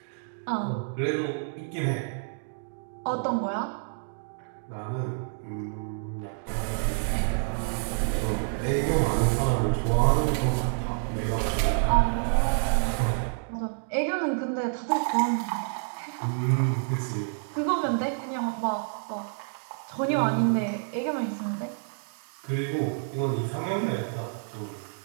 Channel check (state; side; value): silent; left; digital silence